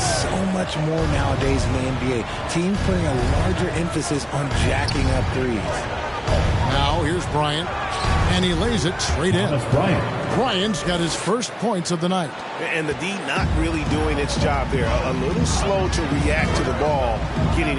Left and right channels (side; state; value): both; identical; correlation 1.00